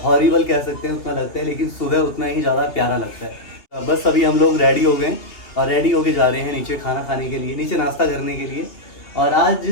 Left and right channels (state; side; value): late; right; 2.7 ms